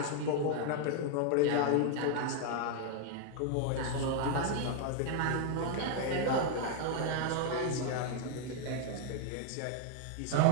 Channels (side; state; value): both; different; correlation 0.00